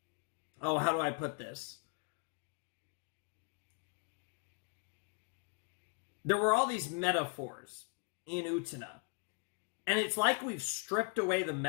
oh, how do I put this? There were all these metaphors in Utena. And it's like we've stripped away the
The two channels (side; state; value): right; quieter; 34.9 dB